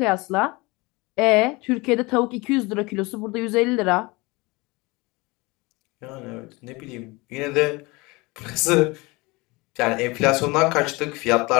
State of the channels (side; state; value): right; quieter; 24.4 dB